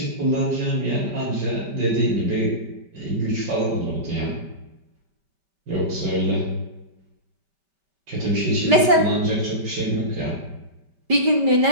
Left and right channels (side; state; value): left; late; 5.1 ms